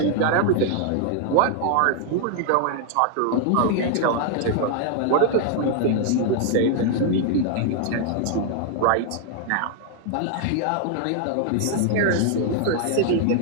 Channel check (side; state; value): both; different; correlation 0.00